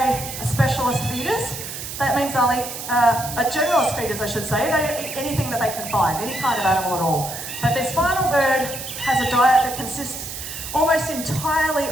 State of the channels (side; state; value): right; noise; hiss, 8 dB below the sound